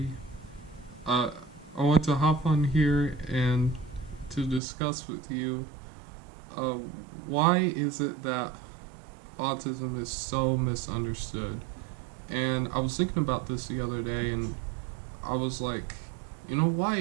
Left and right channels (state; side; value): drops out; left; at 4.6 s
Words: I want to hop on here and to discuss with you uh, why is it that autism is so misunderstood. And I was thinking about this the other day, and I was like, why